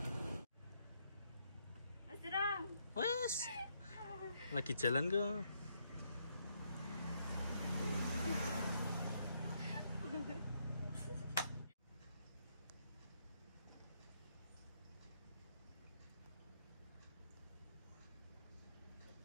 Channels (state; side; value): inverted; both; correlation -0.75